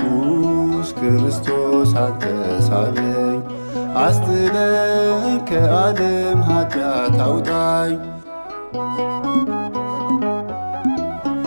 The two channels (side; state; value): both; inverted; correlation -1.00